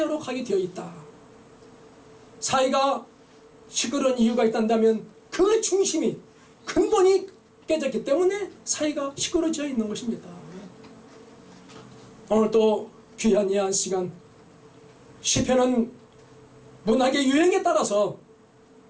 가게 되어 있다. 사회가 시끄러운 이유가 있다면 그 중심이, 근본이 깨졌기 때문에 사회가 시끄러워져 있는 것입니다. 오늘 또 귀한 이 한 시간, 시편은 문학의 유행에 따라서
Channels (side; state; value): both; identical; correlation 1.00